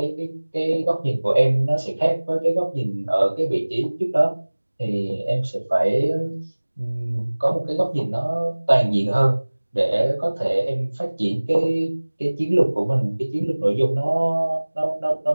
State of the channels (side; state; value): both; inverted; correlation -1.00